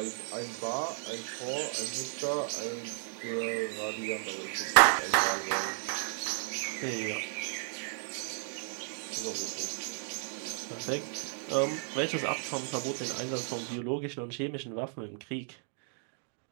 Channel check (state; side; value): silent; left; 55 dB below the other